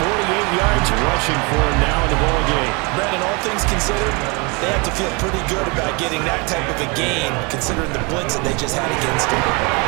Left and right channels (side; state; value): left; quieter; 29.4 dB